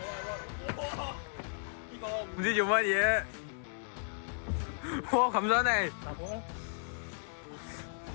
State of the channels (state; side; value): silent; right; 55 dB below the other